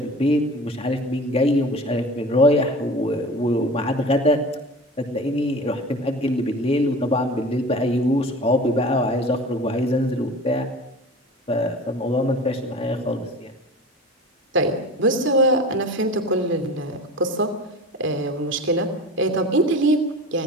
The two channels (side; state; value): both; normal; correlation 0.37